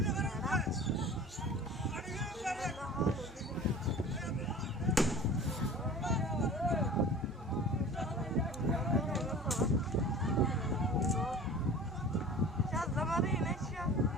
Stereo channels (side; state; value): both; normal; correlation 0.40